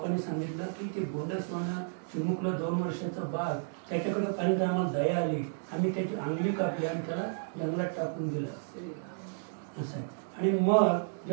सांगितलं की ते गोंडसवानं चिमुकलं 2 वर्षाचं बाळ, त्याच्याकडे पाहिजे आम्हाला दया आली, आम्ही त्याची अंगली कापली आणि त्याला जंगलात टाकून दिलं असं आहे. आणि मग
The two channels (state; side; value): silent; left; digital silence